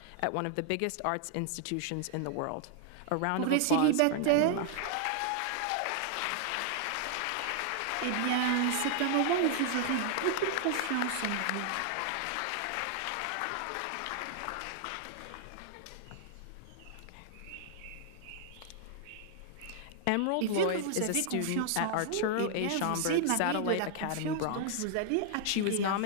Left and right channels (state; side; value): different; both; correlation 0.00